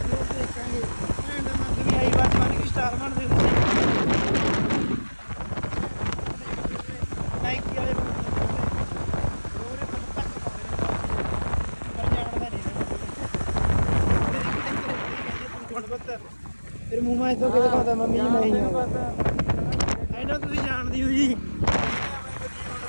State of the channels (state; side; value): inverted; both; correlation -1.00